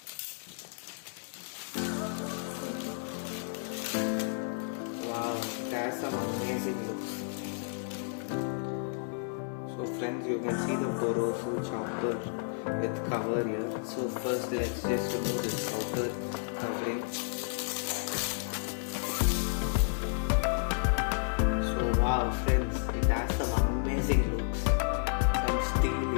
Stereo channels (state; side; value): silent; right; digital silence